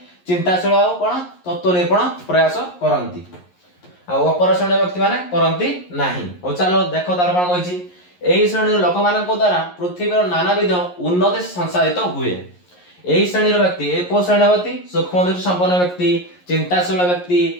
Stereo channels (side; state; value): right; late; 11 ms